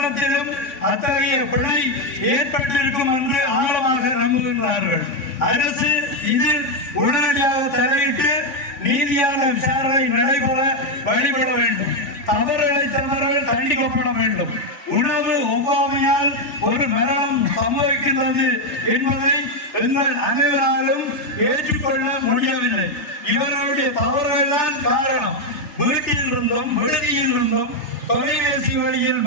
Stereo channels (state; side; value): late; right; 3.5 ms